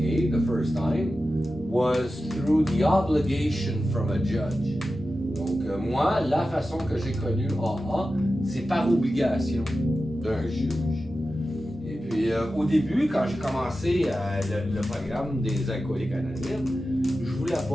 the first time was through the obligation from a judge. Donc moi, la façon que j'ai connu AA, c'est par obligation d'un juge. Et puis au début, quand j'ai commencé le programme des Alcooliques Anonymes, je voulais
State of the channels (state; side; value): normal; both; correlation 0.93